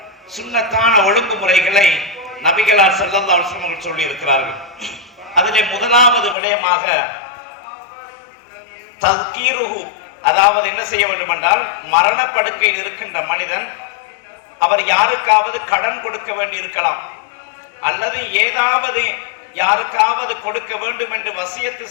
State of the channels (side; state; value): right; drops out; at 6.4 s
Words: சுன்னத்தான ஒழுங்குமுறைகளை நபிகளார் ஸல்லல்லாஹு அலைஹி வஸல்லம் சொல்லி இருக்கிறார்கள். அதிலே முதலாவது விடயமாக தஸ்கீருஹு, அதாவது என்ன செய்ய வேண்டும் என்றால், மரணப்படுக்கையில் இருக்கின்ற மனிதன் அவர் யாருக்காவது கடன் கொடுக்க வேண்டி இருக்கலாம், அல்லது ஏதாவது யாருக்காவது கொடுக்க வேண்டும் என்று வசியத்து